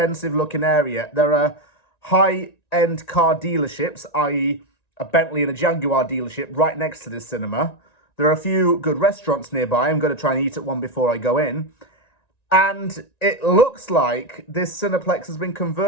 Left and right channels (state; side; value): late; right; 1.9 ms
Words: looking area. There are high-end car dealerships, i.e. a Bentley and a Jaguar dealership right next to this cinema. There are a few good restaurants nearby. I'm going to try and eat at one before I go in. And it looks like this Cineplex has been